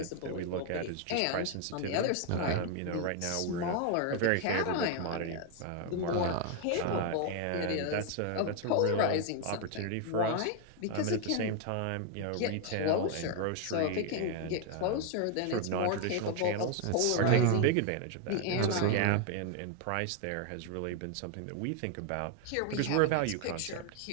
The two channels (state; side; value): different; both; correlation 0.01